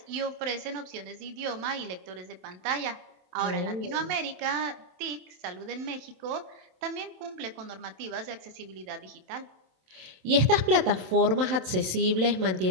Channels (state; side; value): late; left; 27 ms